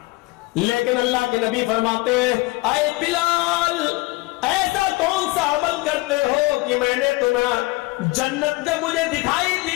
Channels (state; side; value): quieter; right; 22.3 dB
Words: لیکن اللہ کے نبی فرماتے ہیں, اے بلال, ایسا کون سا عمل کرتے ہو کہ میں نے تمہیں جنت, جب مجھے دکھائی